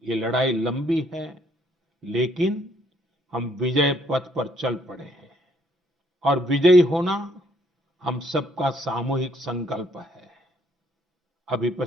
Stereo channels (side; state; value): both; normal; correlation 0.67